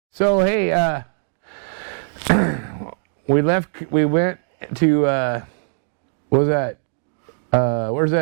So, hey, we went to, what was that? Where's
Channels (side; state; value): left; silent; digital silence